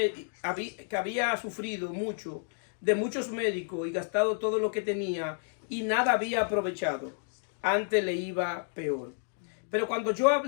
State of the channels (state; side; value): silent; right; digital silence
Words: de muchos médicos y gastado todo lo que tenía y nada había aprovechado, antes le iba peor. Pero cuando oyó